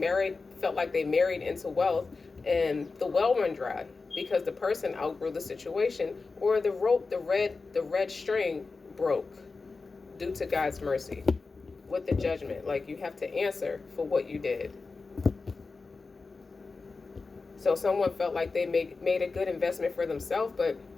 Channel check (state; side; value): quieter; right; 4.1 dB